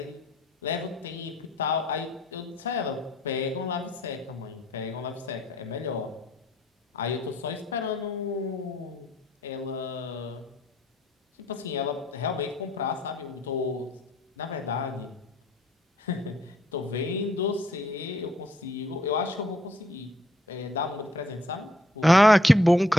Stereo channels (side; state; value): both; normal; correlation 0.67